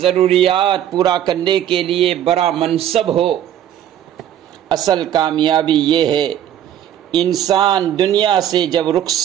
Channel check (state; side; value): quieter; left; 10.8 dB